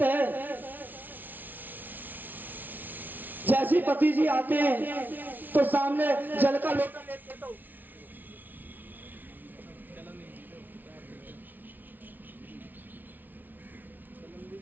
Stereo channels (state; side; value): late; left; 0.084 ms